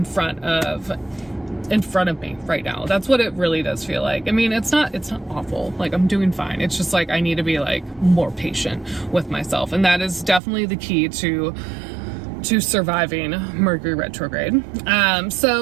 front of me right now. That's what it really does feel like. I mean, it's not awful. Like I'm doing fine. It's just like I need to be like more patient with myself. And that is definitely the key to surviving Mercury retrograde.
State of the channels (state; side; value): drops out; left; at 10.4 s